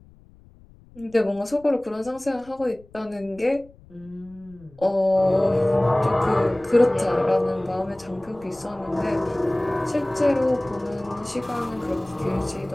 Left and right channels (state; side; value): noise; left; rumble, 25 dB below the sound